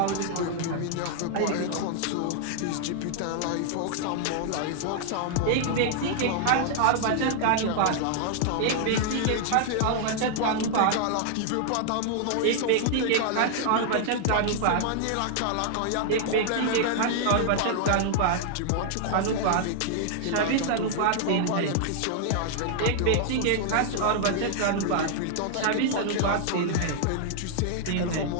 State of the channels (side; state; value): both; different; correlation 0.00